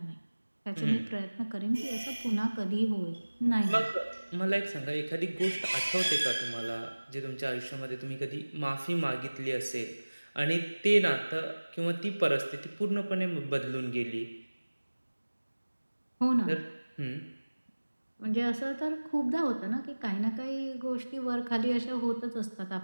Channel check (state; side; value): inverted; both; correlation -1.00